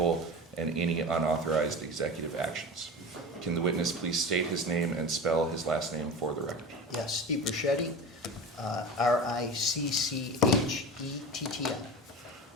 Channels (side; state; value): both; normal; correlation 0.31